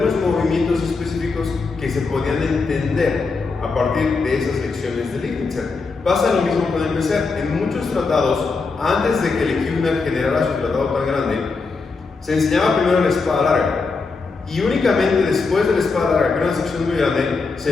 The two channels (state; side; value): quieter; right; 4.3 dB